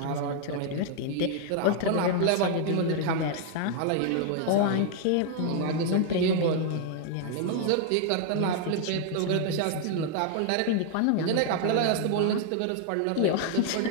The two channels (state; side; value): different; both; correlation 0.00